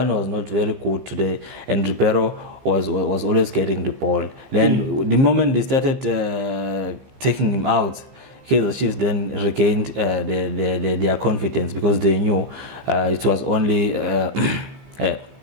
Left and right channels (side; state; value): left; late; 15 ms